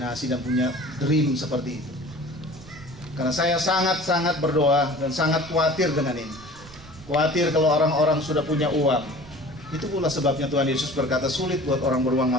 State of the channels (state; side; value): noise; right; rumble, 19 dB below the sound